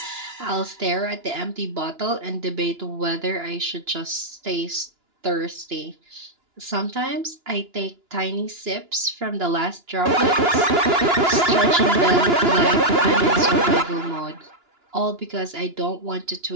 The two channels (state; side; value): late; left; 2.9 ms